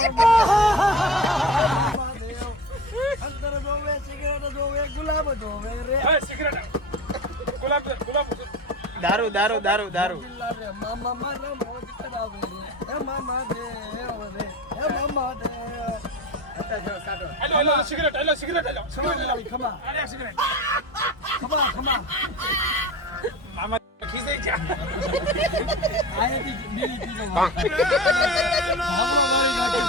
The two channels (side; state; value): both; normal; correlation 0.31